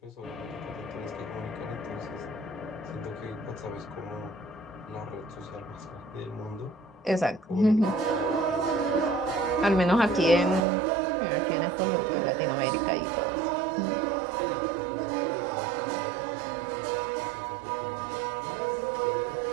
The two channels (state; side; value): drops out; left; at 10.7 s